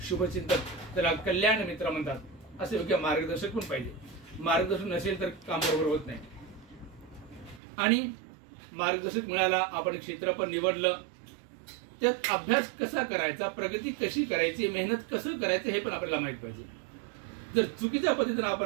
शुभचिंतक, त्याला कल्याण मित्र म्हणतात, असे योग्य मार्गदर्शक पण पाहिजे। मार्गदर्शन नसेल तर काम बरोबर होत नाही। आणि मार्गदर्शक मिळाला, आपण क्षेत्र पण निवडलं, त्यात अभ्यास कसा करायचा, प्रगती कशी करायची, मेहनत कसं करायचं हे पण आपल्याला माहित पाहिजे। जर चुकीच्या पद्धतीने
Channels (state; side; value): drops out; left; at 7.6 s